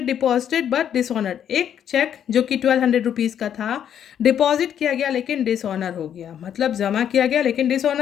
deposited but dishonoured. एक चेक जो कि 1,200 रुपीज़ का था डिपॉजिट किया गया लेकिन डिसऑनर हो गया। मतलब जमा किया गया लेकिन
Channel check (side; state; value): right; quieter; 9.3 dB